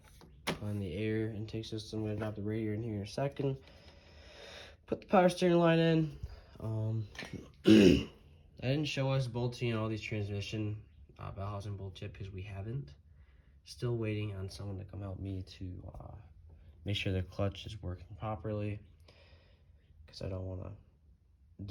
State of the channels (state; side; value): identical; both; correlation 1.00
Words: On the air intake system. I'm gonna drop the radiator in here in a second. Put the power steering line in. I didn't show us bolting all these transmission bell housing bolt yet because we haven't. Still waiting on someone to come help me to make sure the clutch is working properly, because I don't want to